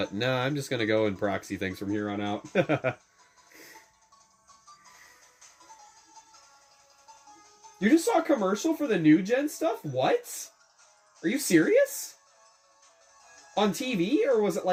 nah, I'm just gonna go and proxy things from here on out. You just saw a commercial for the new gen stuff? What? Are you serious? On TV? Or was it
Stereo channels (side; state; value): both; identical; correlation 1.00